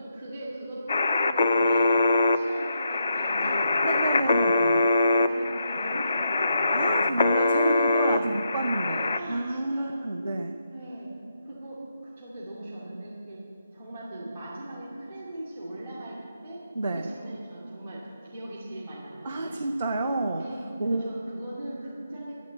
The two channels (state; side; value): inverted; both; correlation -0.81